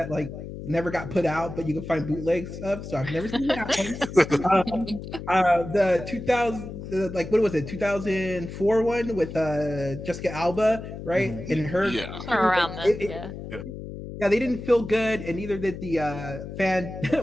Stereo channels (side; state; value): left; noise; hum, 10 dB below the sound